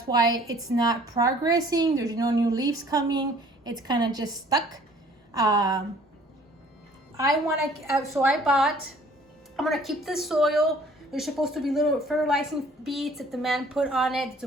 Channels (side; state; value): both; normal; correlation 0.55